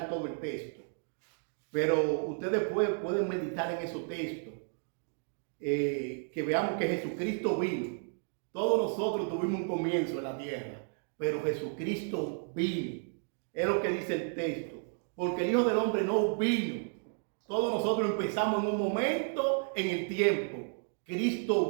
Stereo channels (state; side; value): silent; left; 56 dB below the other